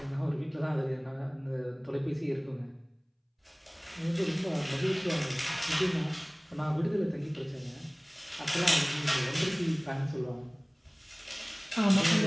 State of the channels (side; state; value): both; identical; correlation 1.00